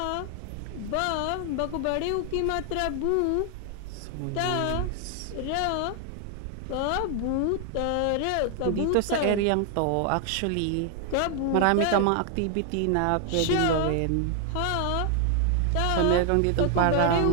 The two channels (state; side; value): different; both; correlation 0.00